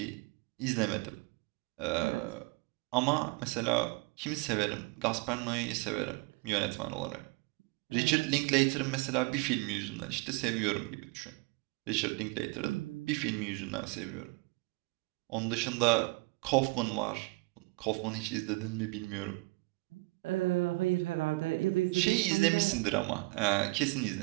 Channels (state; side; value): quieter; left; 24.6 dB